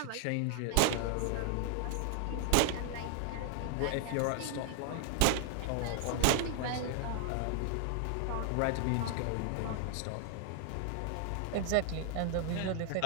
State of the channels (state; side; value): different; both; correlation 0.00